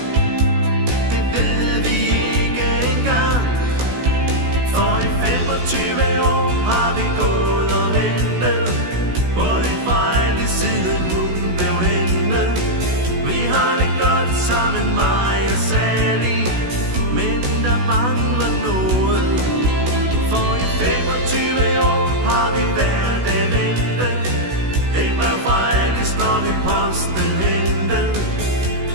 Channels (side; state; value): left; late; 16 ms